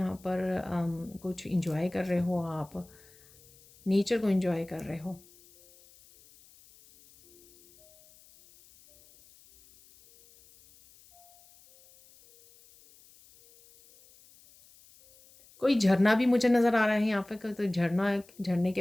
पर कुछ इंजॉय कर रहे हो आप, नेचर को इंजॉय कर रहे हो। कोई झरना भी मुझे नज़र आ रहा है यहाँ पे, तो झरना, झरने के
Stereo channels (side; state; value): left; noise; hiss, 27 dB below the sound